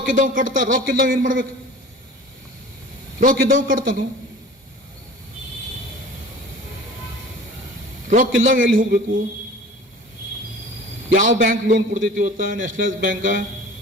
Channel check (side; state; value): both; normal; correlation 0.42